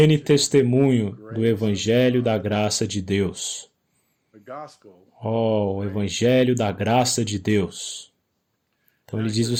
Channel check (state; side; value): identical; both; correlation 1.00